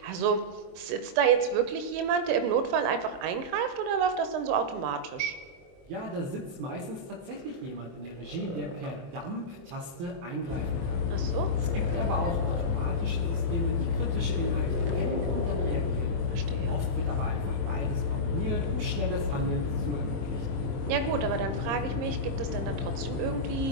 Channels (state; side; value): late; left; 23 ms